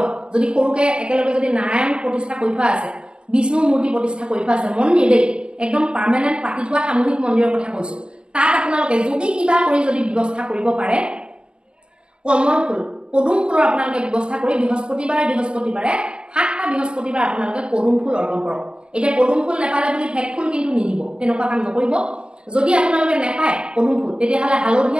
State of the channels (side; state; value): left; late; 0.052 ms